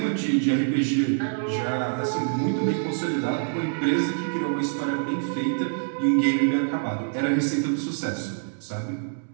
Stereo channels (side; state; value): left; silent; 61 dB below the other